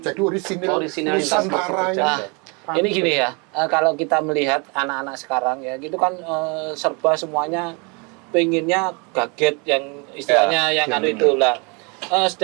Jadi Orisinalitas Nusantara ini. Nah, ini gini ya, kalau kita melihat anak-anak sekarang ya, gitu kan serba semuanya pengennya gadget yang istilahnya yang anu itu lah.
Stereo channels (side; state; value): left; quieter; 31.8 dB